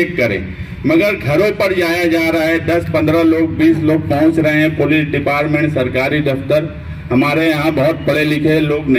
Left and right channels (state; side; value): identical; both; correlation 1.00